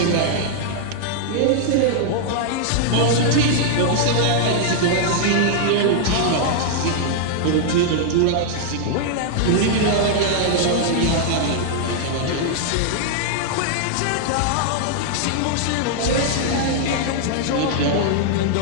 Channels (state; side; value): different; both; correlation -0.01